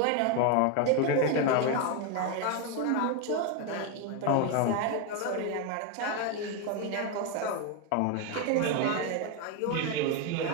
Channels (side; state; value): both; different; correlation 0.02